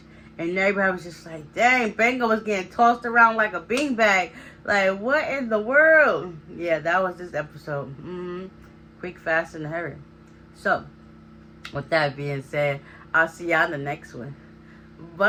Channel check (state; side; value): identical; both; correlation 1.00